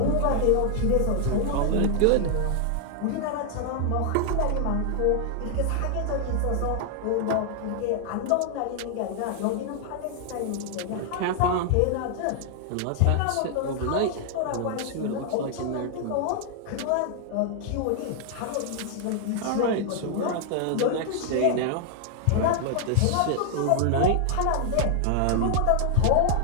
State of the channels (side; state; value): both; different; correlation 0.00